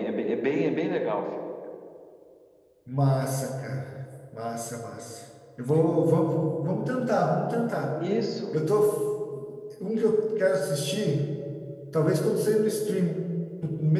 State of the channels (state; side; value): identical; both; correlation 1.00